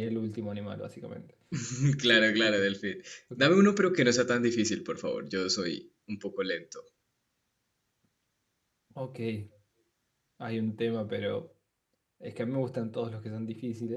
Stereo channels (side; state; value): both; identical; correlation 1.00